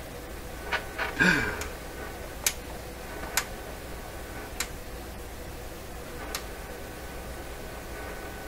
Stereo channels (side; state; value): both; identical; correlation 1.00